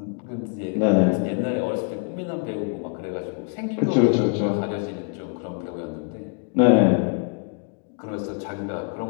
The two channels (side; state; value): right; quieter; 38.8 dB